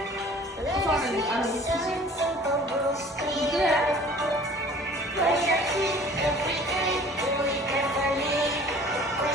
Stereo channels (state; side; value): normal; both; correlation 0.48